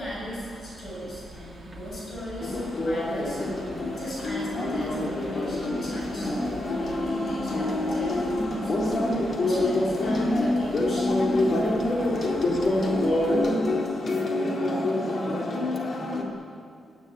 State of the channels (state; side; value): normal; both; correlation 0.84